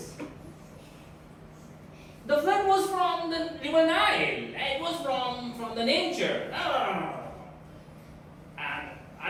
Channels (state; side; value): identical; both; correlation 1.00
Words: The flood was from the river Nile. It was from the nature. No. And